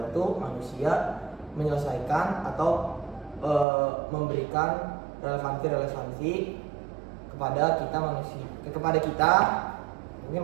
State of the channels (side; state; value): left; drops out; at 3.7 s